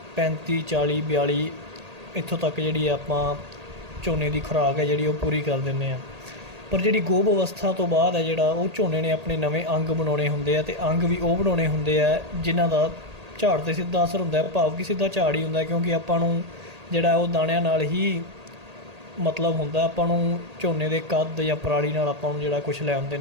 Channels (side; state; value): left; late; 1.8 ms